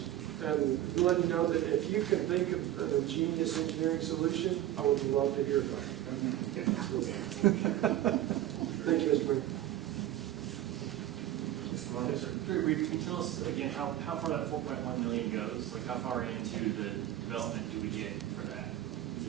And letting you know that if you can think of a genius engineering solution, I would love to hear about it. Thank you, Mr. Mayor. Can you tell us again how far that 4.1 million goes? Like how far into the development do we get for that? Is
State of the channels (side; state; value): left; quieter; 13.6 dB